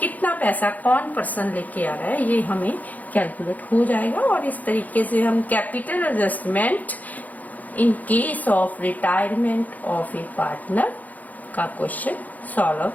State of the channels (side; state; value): right; late; 0.079 ms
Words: पैसा कौन पर्सन लेके आ रहा है ये हमें कैलकुलेट हो जाएगा। और इस तरीके से हम capital adjustment in case of retirement of A partner का क्वेश्चन सॉल्व